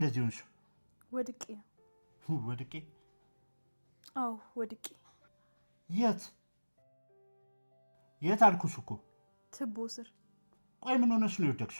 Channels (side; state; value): both; inverted; correlation -1.00